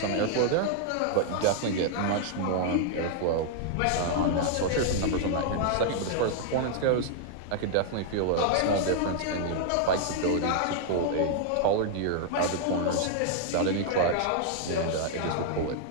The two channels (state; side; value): different; both; correlation 0.00